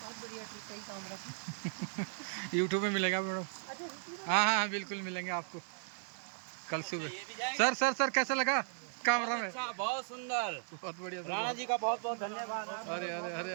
बढ़िया ट्रिप है कामरा की। यूट्यूब में मिलेगा मैडम। हाँ, बिल्कुल मिलेंगे आपको कल सुबह। सर कैसा लगा कामरा में? अच्छा, बहुत सुंदर, बहुत बढ़िया सर। राणा जी का बहुत बहुत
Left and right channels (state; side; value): silent; left; digital silence